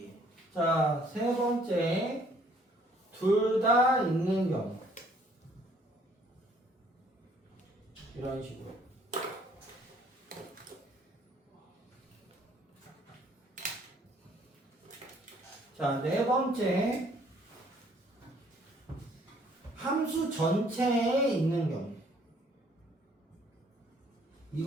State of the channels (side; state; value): both; normal; correlation 0.61